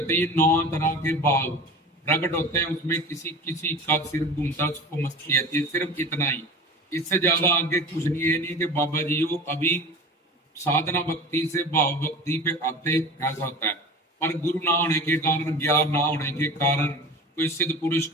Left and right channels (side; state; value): both; normal; correlation 0.36